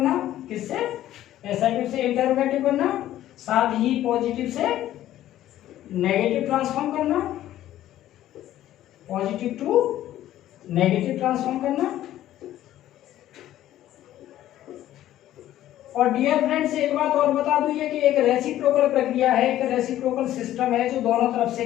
किससे? असर्टिव से इंटेरोगेटिव करना, साथ ही पॉजिटिव से नेगेटिव ट्रांसफॉर्म करना, पॉजिटिव टू नेगेटिव ट्रांसफॉर्म करना। और डियर फ्रेंड्स एक बात और बता दूं, ये कि एक रेसिप्रोकल प्रक्रिया है, एक रेसिप्रोकल सिस्टम है जो दोनों तरफ से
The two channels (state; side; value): quieter; right; 13.2 dB